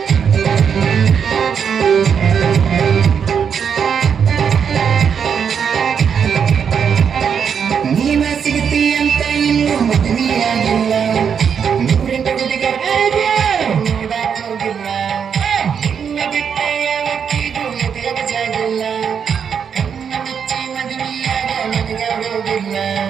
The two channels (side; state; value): left; quieter; 7.2 dB